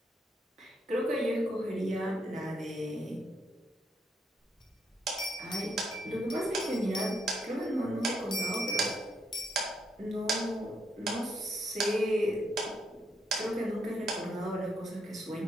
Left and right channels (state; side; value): normal; both; correlation 0.76